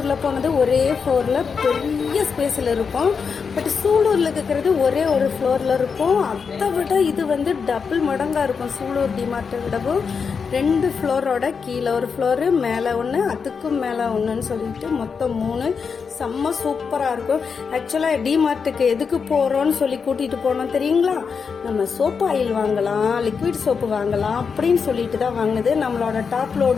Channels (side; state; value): right; quieter; 5.8 dB